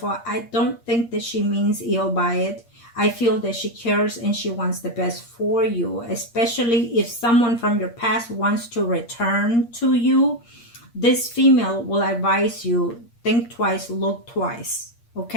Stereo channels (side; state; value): right; late; 8.6 ms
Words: I don't think that she means ill by it. I feel that she cares and she wants the best for you, especially if someone from your past wants to return to you. This female will advise you, think twice, look twice,